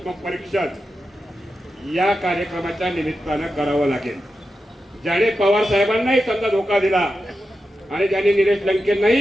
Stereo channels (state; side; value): normal; both; correlation 0.90